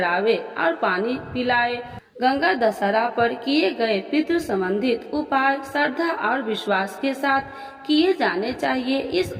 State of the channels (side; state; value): both; identical; correlation 1.00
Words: और पानी पिलाए। गंगा दशहरा पर किए गए पितृ संबंधित उपाय श्रद्धा और विश्वास के साथ किए जाने चाहिए। इस